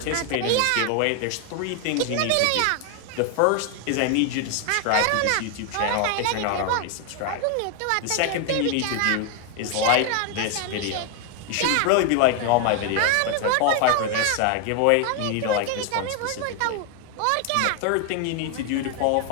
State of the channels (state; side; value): different; both; correlation 0.01